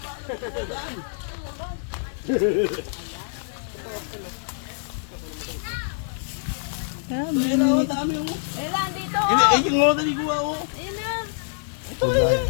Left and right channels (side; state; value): right; silent; digital silence